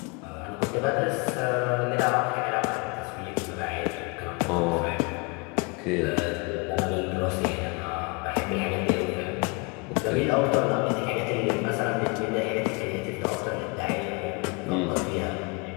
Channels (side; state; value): right; quieter; 30.2 dB